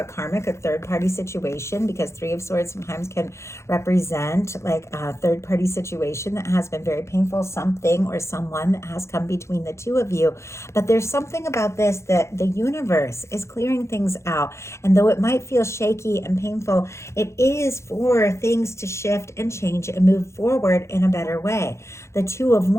karmic or third-party situation, because Three of Swords sometimes can represent like a third-party situation that has been very painful, something or someone that has come between the two of you. But there's something about this that the universe is clearing things out. And though it might feel shaky and painful, it is for things to shift and change and move forward in a better way. The Two of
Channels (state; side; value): late; right; 0.13 ms